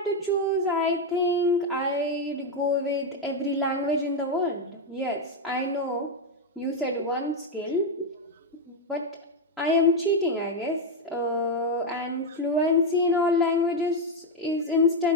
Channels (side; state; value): both; normal; correlation 0.04